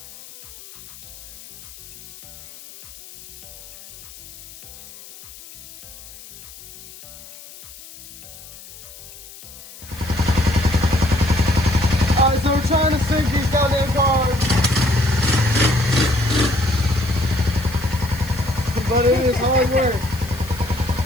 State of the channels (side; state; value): left; noise; hiss, 17 dB below the sound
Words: Alright, so we're trying to sink these goddamn cars. But it is hard work.